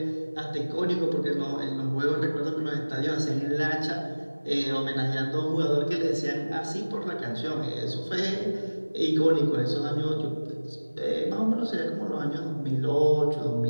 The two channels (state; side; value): inverted; both; correlation -1.00